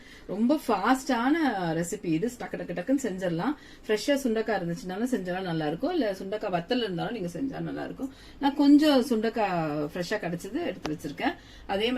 ரொம்ப ஃபாஸ்டான ரெசிபி இது. டக்கு டக்கு டக்குன்னு செஞ்சிடலாம். ஃப்ரெஷ்ஷா சுண்டக்காய் இருந்துச்சுனாலும் செஞ்சாலும் நல்லா இருக்கும், இல்ல சுண்டக்காய் வத்தல் இருந்தாலும் நீங்க செஞ்சா நல்லா இருக்கும். நான் கொஞ்சம் சுண்டக்காய் ஃப்ரெஷ்ஷா கிடைச்சது எடுத்து வச்சிருக்கேன். அதே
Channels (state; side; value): identical; both; correlation 1.00